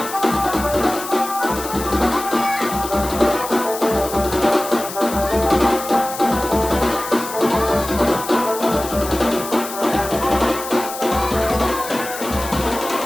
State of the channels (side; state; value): left; noise; hiss, 10 dB below the sound